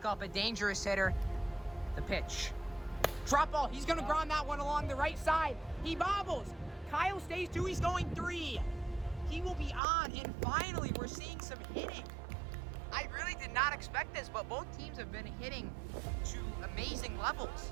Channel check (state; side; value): drops out; left; at 9.8 s